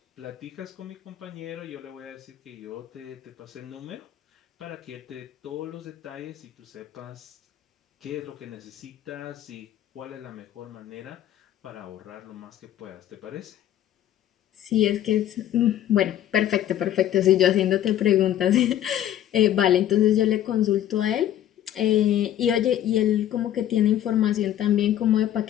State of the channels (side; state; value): right; quieter; 11.6 dB